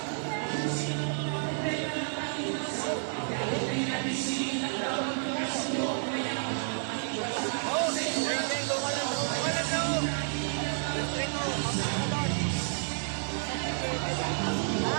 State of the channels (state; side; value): silent; left; 58 dB below the other